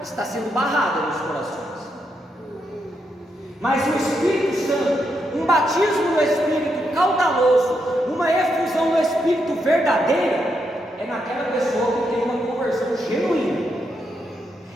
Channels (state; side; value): normal; both; correlation 0.81